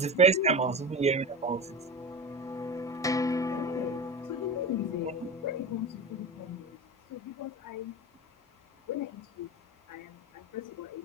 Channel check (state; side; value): normal; both; correlation 0.26